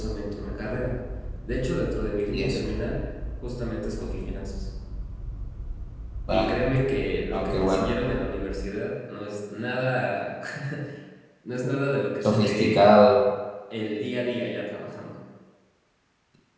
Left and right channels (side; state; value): both; identical; correlation 1.00